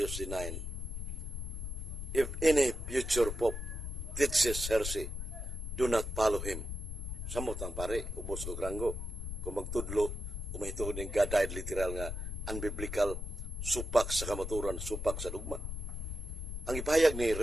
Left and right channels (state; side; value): noise; left; rumble, 5 dB below the sound